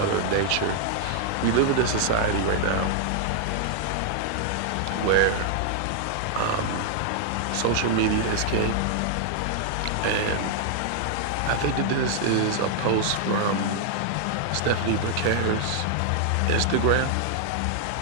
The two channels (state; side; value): different; both; correlation 0.00